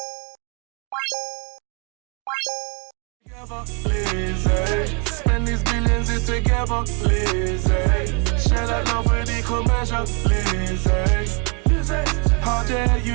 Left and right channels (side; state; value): left; quieter; 35.1 dB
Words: Lizzie, spend these billions here together. Lizzie, share that love with equal measure. Lizzie, how dare